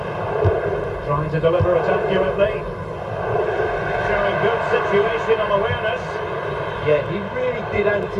Trying to deliver it accurately. Showing good situational awareness. Yeah, he really did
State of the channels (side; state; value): both; identical; correlation 1.00